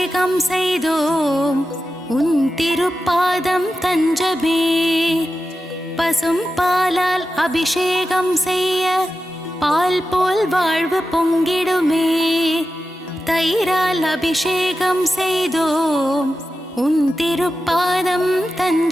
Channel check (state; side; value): normal; both; correlation 0.92